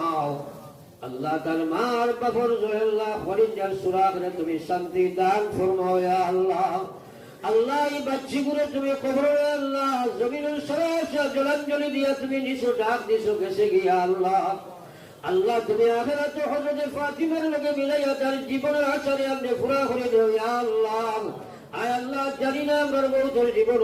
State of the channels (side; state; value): both; identical; correlation 1.00